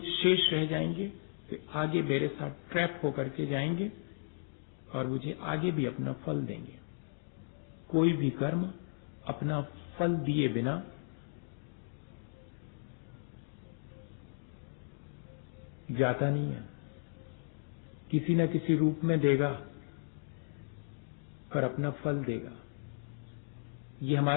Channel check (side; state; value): right; silent; digital silence